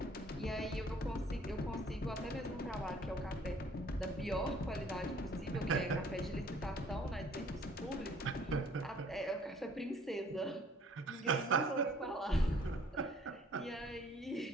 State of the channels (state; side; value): normal; both; correlation 0.57